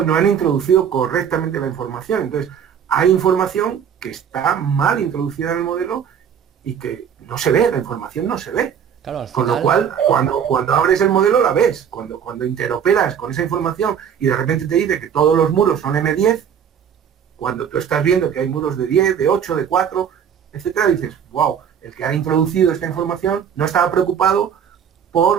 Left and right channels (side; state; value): left; quieter; 8.1 dB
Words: no han introducido correctamente la información. Entonces, hay información que está mal introducida en el modelo y que no se ve, la información no se ve. Claro, al final... Con lo cual, cuando abres el modelo la ves. Cuando interoperas con esa información y de repente te dice que todos los muros son M10, cuando tú estás viendo que hay muros de 10, de 8, de 4, etcétera, dices, wow, el que ha introducido esta información no estaba preocupado por